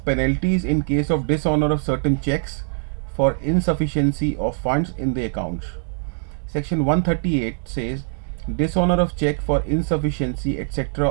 penalties in case of dishonor of certain checks for insufficiency of funds in the account. Section 138 says dishonor of check for insufficiency etc.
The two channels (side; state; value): left; silent; digital silence